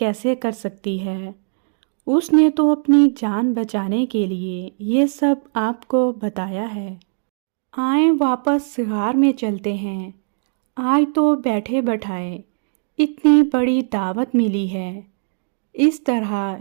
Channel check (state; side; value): silent; left; digital silence